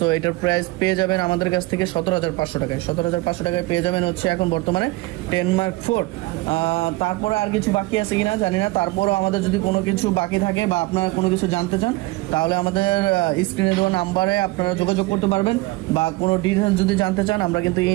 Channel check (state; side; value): quieter; left; 20.9 dB